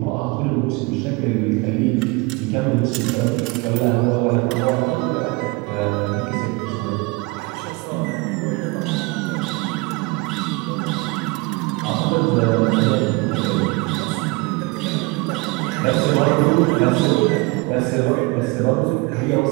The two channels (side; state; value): left; quieter; 26.2 dB